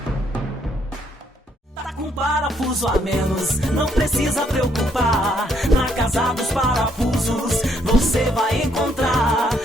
Parafuso a menos, não precisa preocupar. Na Casa dos Parafusos você vai encontrar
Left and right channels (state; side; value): normal; both; correlation 0.71